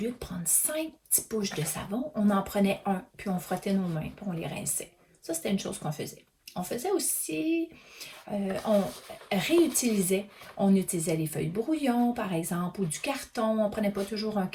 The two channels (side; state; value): both; identical; correlation 1.00